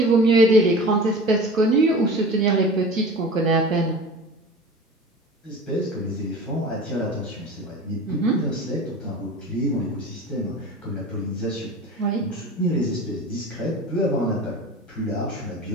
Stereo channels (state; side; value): normal; both; correlation 0.37